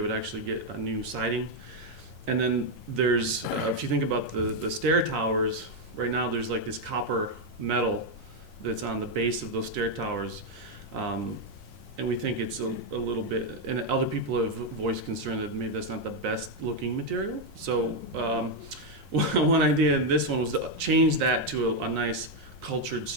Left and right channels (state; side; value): late; right; 24 ms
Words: actually get a new siding. And then there's, if you think about the stair towers, right now there's like this copper metal that's on the base of those stair towers. And we think it's a little bit, and other people have voiced concern that maybe that's not the best looking material. So one idea in this one was to change that to a nice cultured